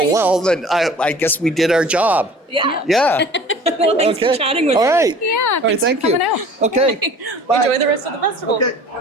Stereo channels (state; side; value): normal; both; correlation 0.45